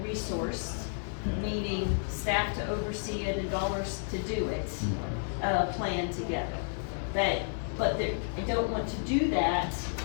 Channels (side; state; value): right; silent; digital silence